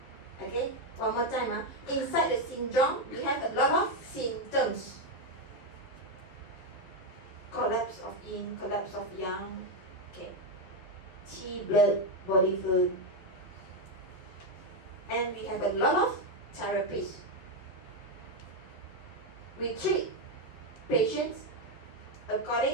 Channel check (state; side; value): late; right; 11 ms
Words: Okay? One more time. Inside the syndrome, we have a lot of symptoms. Collapse of yin, collapse of yang. Okay. Qi, blood, body fluid. And we have a lot of therapies. We treat patients